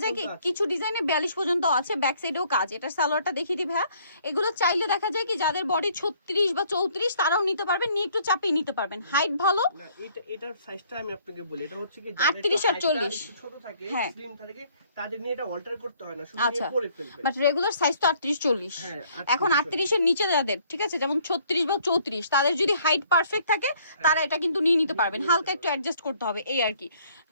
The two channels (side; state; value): both; inverted; correlation -0.62